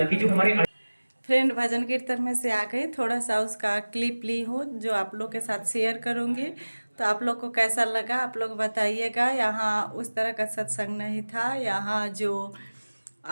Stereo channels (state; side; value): inverted; both; correlation -1.00